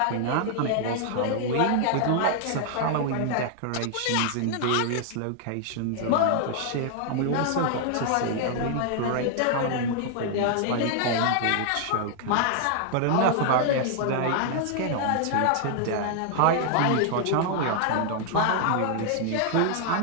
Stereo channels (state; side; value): different; both; correlation 0.00